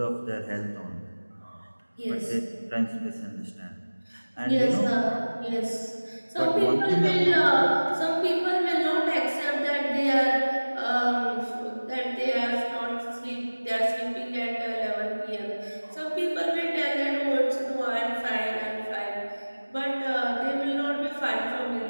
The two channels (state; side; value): inverted; both; correlation -1.00